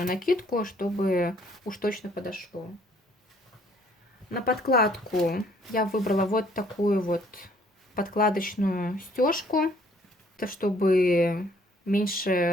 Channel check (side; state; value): both; normal; correlation 0.61